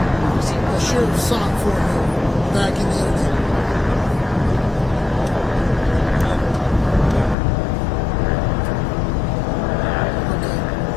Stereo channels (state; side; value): drops out; right; at 7.4 s